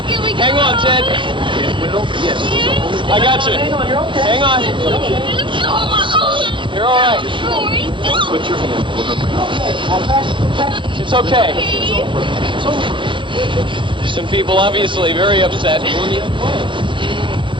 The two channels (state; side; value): late; left; 0.24 ms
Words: Hang on, Ted. I got you. Hang on. You're all right. Put your hand over. It's okay. Some people obviously very upset.